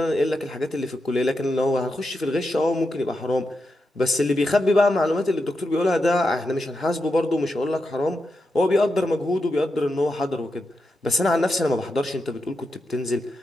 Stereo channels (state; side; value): normal; both; correlation 0.87